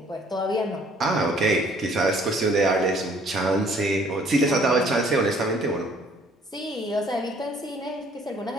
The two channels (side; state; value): both; normal; correlation 0.59